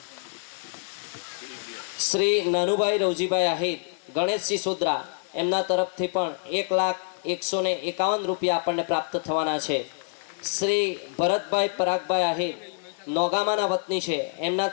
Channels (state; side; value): silent; right; digital silence